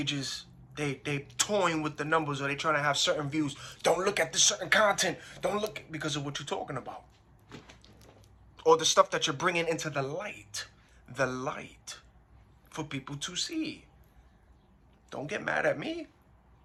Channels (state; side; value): identical; both; correlation 1.00